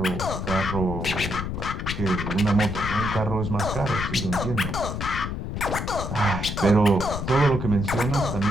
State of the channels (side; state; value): left; noise; rumble, 4 dB below the sound